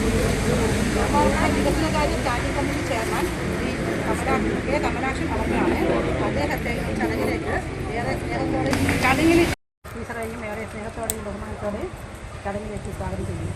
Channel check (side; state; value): both; identical; correlation 1.00